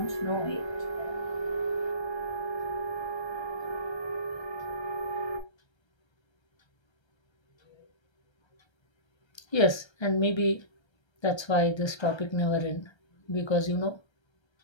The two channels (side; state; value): right; late; 1.3 ms